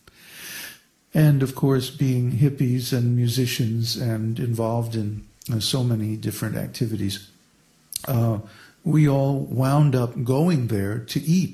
And of course, being hippies and musicians and involved in so many different activities, we all wound up going there to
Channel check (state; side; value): identical; both; correlation 1.00